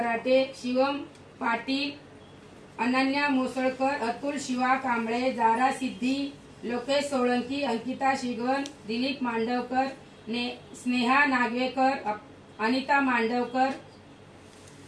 शिवम पाटील, अनन्या मोसळकर, अतुल शिवा कांबळे, जारा सिद्धी, लोकेश सोळंकी, अंकिता शिगवन, दिलीप मांडवकर, स्नेहा नागवेकर, अनिता मांडवकर,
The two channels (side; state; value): both; identical; correlation 1.00